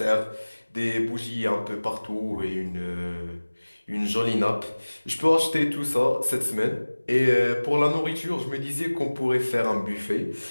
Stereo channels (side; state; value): both; inverted; correlation -1.00